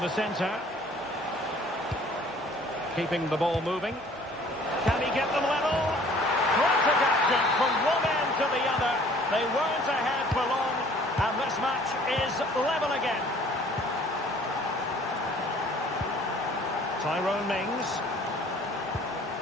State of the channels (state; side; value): normal; both; correlation 0.54